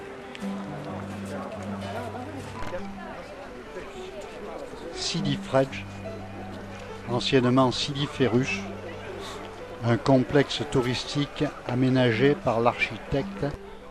Sidi Fredj, anciennement Sidi Ferruch, un complexe touristique aménagé par l'architecte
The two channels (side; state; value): both; identical; correlation 1.00